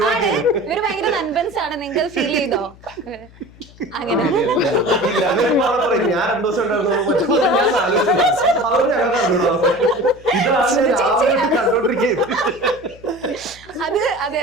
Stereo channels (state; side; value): noise; left; hum, 23 dB below the sound